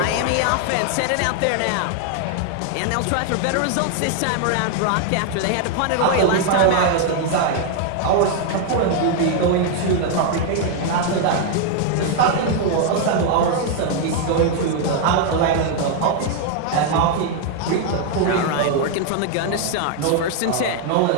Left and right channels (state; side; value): different; both; correlation 0.00